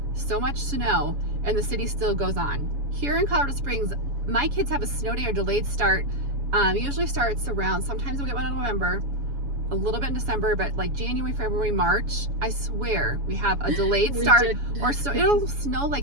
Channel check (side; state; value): left; late; 7.1 ms